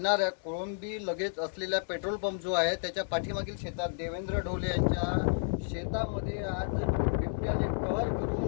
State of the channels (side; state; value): right; silent; 57 dB below the other